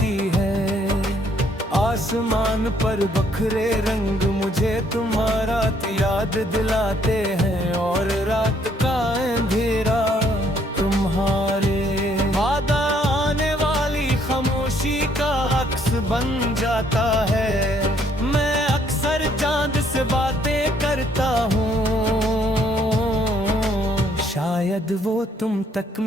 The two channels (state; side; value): normal; both; correlation 0.67